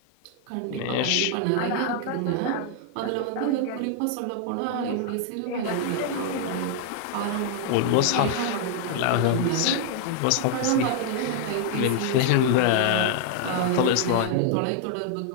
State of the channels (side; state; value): both; different; correlation 0.00